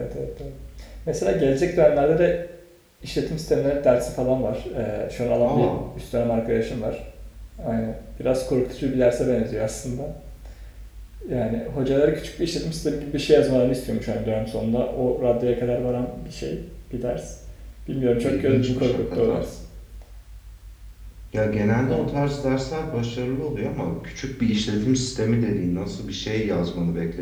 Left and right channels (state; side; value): identical; both; correlation 1.00